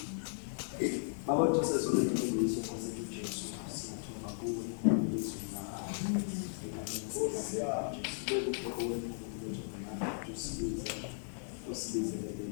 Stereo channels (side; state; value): right; silent; digital silence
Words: Baba Joseph ulitumbulisha kwa sababu Yesu siyatuma kuwe Yesu na usibize